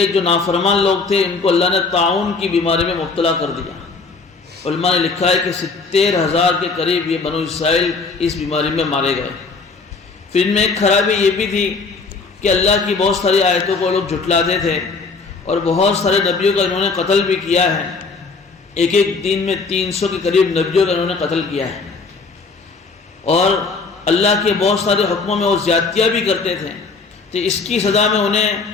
جو نافرمان لوگ تھے ان کو اللہ نے طاعون کی بیماری میں مبتلا کر دیا. علماء نے لکھا ہے کہ 70,000 کے قریب یہ بنو اسرائیل اس بیماری میں مارے گئے. پھر ان میں ایک خرابی یہ بھی تھی کہ اللہ کی بہت ساری آیتوں کو لوگ جھٹلاتے تھے اور بہت سارے نبیوں کا انہوں نے قتل بھی کیا ہے. ایک دن میں 300 کے قریب نبیوں کا انہوں نے قتل کیا ہے، اور اللہ کے بہت سارے حکموں میں وہ زیادتیاں بھی کرتے تھے. تو اس کی سزا میں انہیں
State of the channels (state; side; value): quieter; right; 4.3 dB